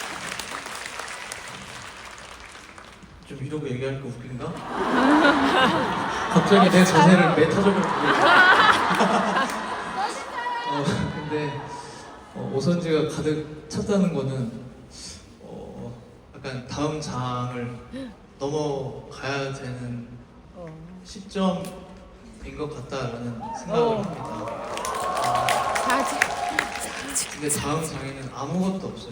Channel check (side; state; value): both; identical; correlation 1.00